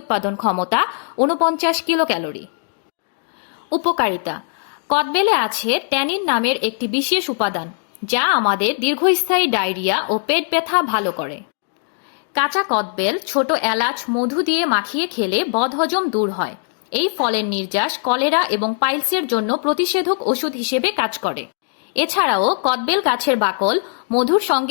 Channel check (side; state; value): right; silent; digital silence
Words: ক্ষমতা 49 কিলো ক্যালোরি। উপকারিতা। কদবেলে আছে ট্যানিন নামের একটি বিশেষ উপাদান, যা আমাদের দীর্ঘস্থায়ী ডায়রিয়া ও পেট ব্যথা ভালো করে। কাঁচা কদবেল ছোট এলাচ মধু দিয়ে মাখিয়ে খেলে বদহজম দূর হয়। এই ফলের নির্যাস কলেরা এবং পাইলসের জন্য প্রতিষেধক ওষুধ হিসেবে কাজ করে। এছাড়াও কদবেল গাছের বাকল মধুর